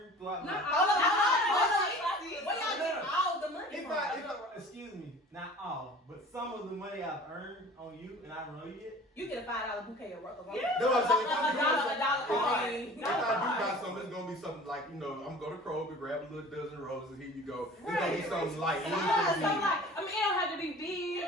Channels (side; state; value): both; normal; correlation 0.44